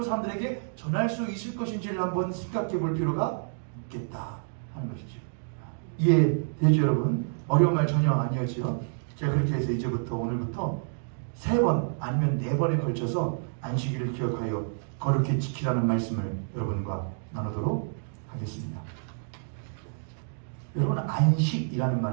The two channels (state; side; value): silent; left; digital silence